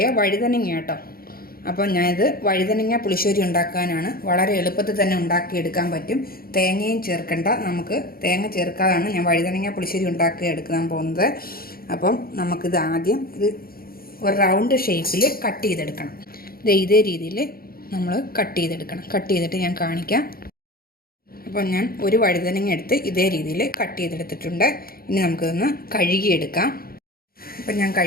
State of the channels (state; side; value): late; right; 0.43 ms